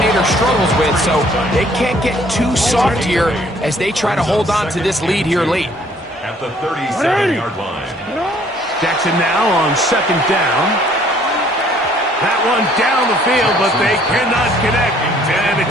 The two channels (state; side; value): normal; both; correlation 0.60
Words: struggles with, so they can't get too soft here as they try to hold on to this lead here late. At the 37-yard line. Jackson now on second down. That one down the field, but they cannot connect, and